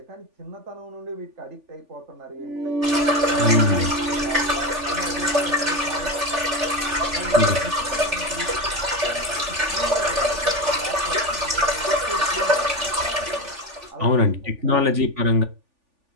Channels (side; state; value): left; late; 3.4 ms